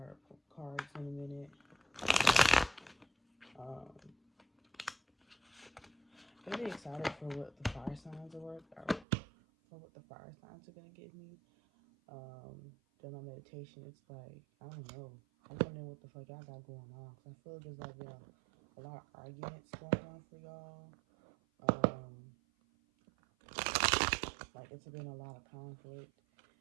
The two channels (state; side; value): drops out; left; at 9.1 s